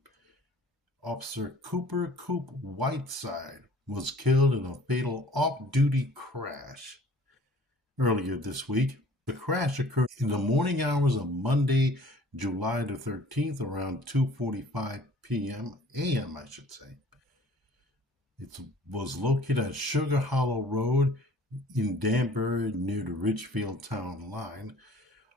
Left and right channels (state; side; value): normal; both; correlation 0.51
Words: Officer Cooper Coop Whiteside was killed in a fatal off-duty crash earlier this week. The crash occurred in the morning hours of Monday, July the 13th, around 2:45 p.m. a.m., I should say. It was located at Sugar Hollow Road in Danbury near the Ridgefield town line.